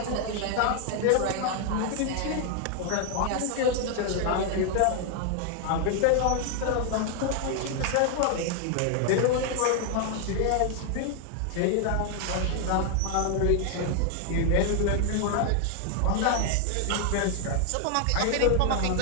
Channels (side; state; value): both; different; correlation 0.00